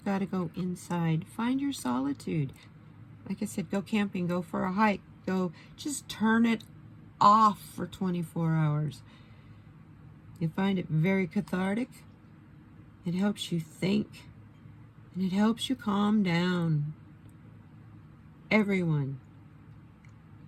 got to go inside. Find your solitude. Like I said, go camping, go for a hike. go. Just turn it off for 24 hours. You find it very cathartic. It helps you think, and it helps you calm down. Everyone.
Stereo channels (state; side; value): identical; both; correlation 1.00